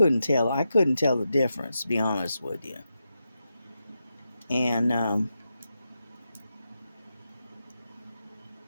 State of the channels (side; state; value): both; inverted; correlation -0.88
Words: tell. I couldn't tell the difference, to be honest with you. And